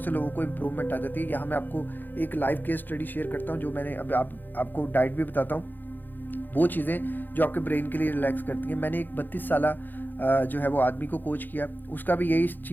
से लोगों को इम्प्रूवमेंट आ जाती है। यहाँ मैं आपको एक लाइव केस स्टडी शेयर करता हूँ, जो मैंने अब आपको डाइट भी बताता हूँ, वो चीज़ें जो आपके ब्रेन के लिए रिलैक्स करती हैं। मैंने एक 32 साल जो है वो आदमी को कोच किया, उसका भी यही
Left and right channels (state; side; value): late; right; 0.089 ms